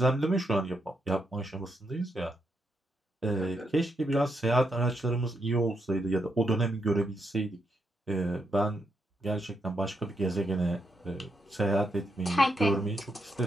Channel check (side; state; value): both; normal; correlation 0.80